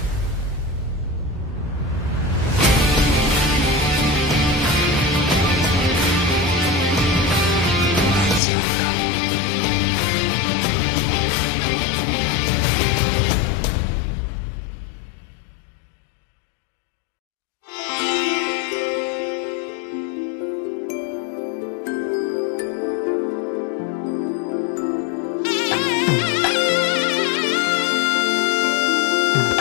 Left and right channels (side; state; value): right; drops out; at 8.4 s